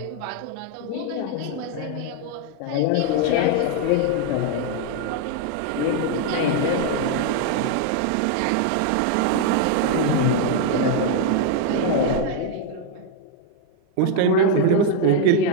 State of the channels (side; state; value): both; different; correlation 0.00